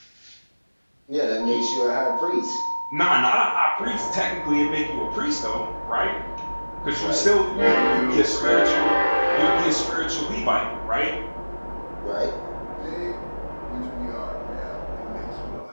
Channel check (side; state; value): both; inverted; correlation -1.00